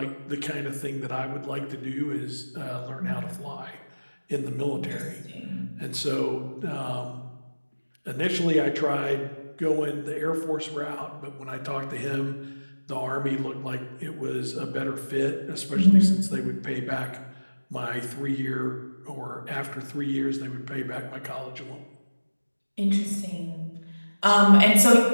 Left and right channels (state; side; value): inverted; both; correlation -1.00